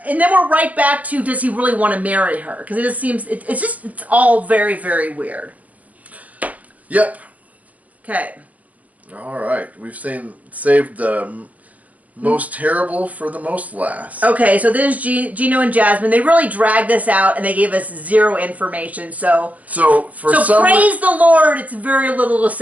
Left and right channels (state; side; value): late; left; 0.073 ms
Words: And then we're right back to, does he really want to marry her? Because it just seems, it's all very, very weird. Yep. Okay. All right. We've saved the most terrible for the most last. Okay, so this is Gino and Jasmine. They really dragged this out, and they gave us zero information. So praise the Lord, it's very little to